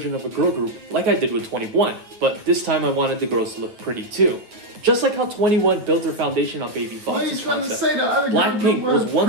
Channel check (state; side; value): late; left; 9.1 ms